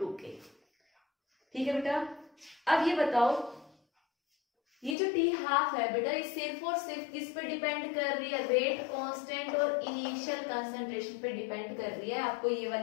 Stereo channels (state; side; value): drops out; right; at 5.0 s